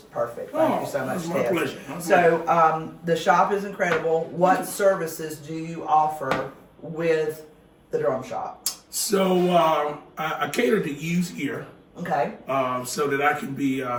perfect. Thank you so much, it's my Tez. pleasure. So the shop is incredible. What services do you offer with the drum shop? So I cater to used gear, Okay. so that I can be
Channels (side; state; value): both; identical; correlation 1.00